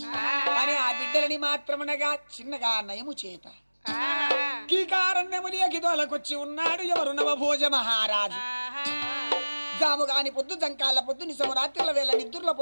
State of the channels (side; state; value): both; inverted; correlation -1.00